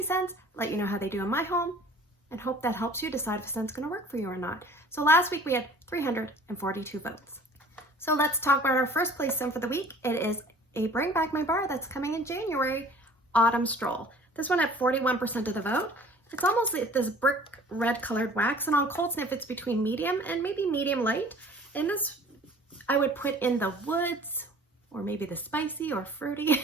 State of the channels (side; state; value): both; normal; correlation 0.49